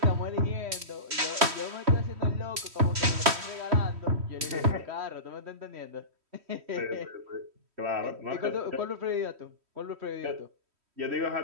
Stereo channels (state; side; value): late; left; 3.1 ms